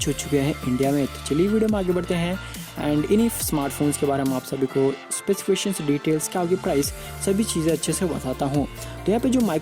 हो चुके हैं इंडिया में। तो चलिए वीडियो में आगे बढ़ते हैं एंड इन्हीं स्मार्टफोन्स के बारे में आप सभी को स्पेसिफिकेशंस, डिटेल्स, क्या होगी प्राइस, सभी चीज़ें अच्छे से बताता हूँ। तो यहाँ पे जो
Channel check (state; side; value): identical; both; correlation 1.00